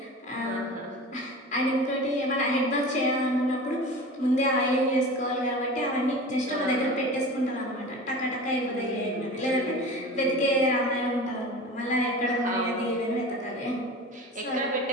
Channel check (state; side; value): normal; both; correlation 0.35